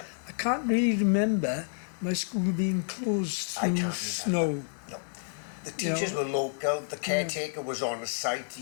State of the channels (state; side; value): silent; right; digital silence